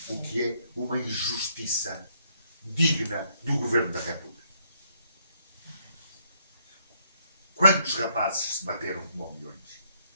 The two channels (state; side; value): inverted; both; correlation -0.71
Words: O que é uma injustiça digna do Governo da República. Quantos rapazes se bateram como milhões?